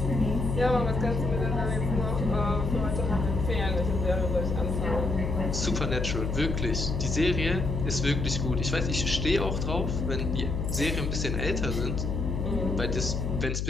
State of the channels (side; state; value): left; noise; hum, 1 dB below the sound